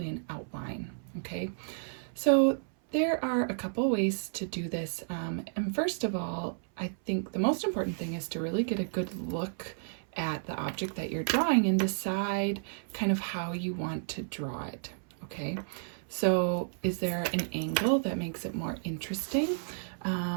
an outline, okay? So there are a couple ways to do this. And first of all, I think the most important thing is to really get a good look at the object that you're drawing and decide kind of how you want to draw it, okay? So is there an angle that makes it more interesting?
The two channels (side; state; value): left; silent; 57 dB below the other